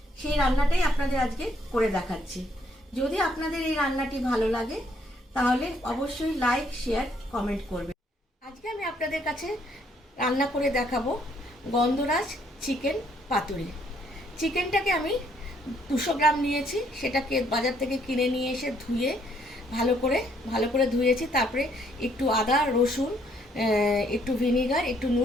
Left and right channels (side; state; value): both; normal; correlation 0.68